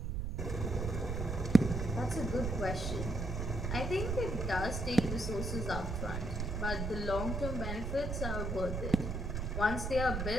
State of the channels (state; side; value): noise; right; rumble, 2 dB below the sound